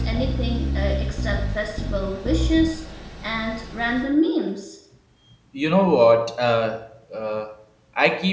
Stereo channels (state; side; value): identical; both; correlation 1.00